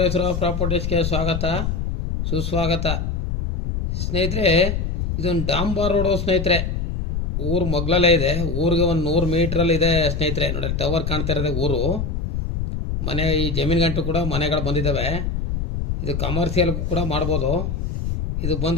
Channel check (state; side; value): noise; left; rumble, 2 dB below the sound